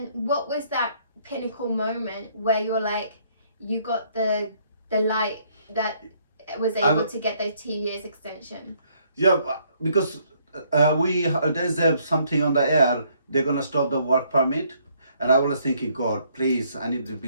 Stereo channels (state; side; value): inverted; both; correlation -0.67